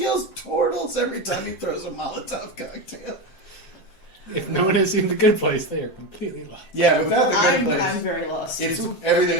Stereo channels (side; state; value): right; late; 7.6 ms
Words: Tortles every time he throws a Molotov cocktail. If no one has seen The Good Place, they are completely lost. Yeah, without the good I'm place, very lost. it's